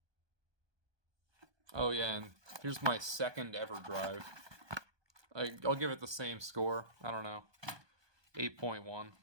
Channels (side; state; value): left; late; 1.2 ms